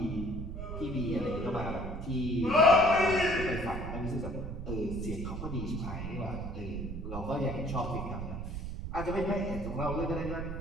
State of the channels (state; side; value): noise; right; rumble, 6 dB below the sound